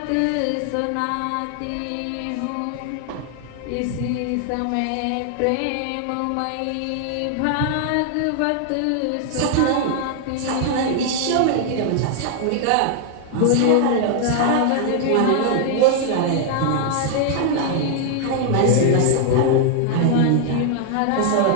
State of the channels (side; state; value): both; different; correlation 0.00